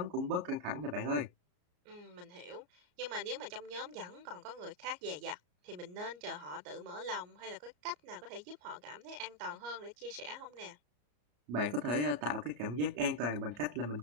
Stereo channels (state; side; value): late; left; 34 ms